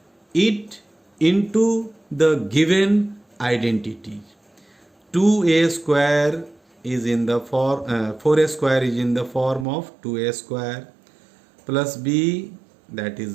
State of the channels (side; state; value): left; drops out; at 9.7 s